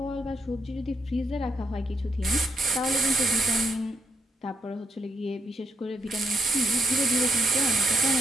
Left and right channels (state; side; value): normal; both; correlation 0.77